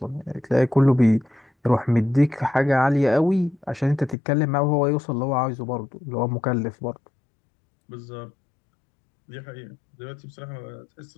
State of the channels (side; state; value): right; drops out; at 4.2 s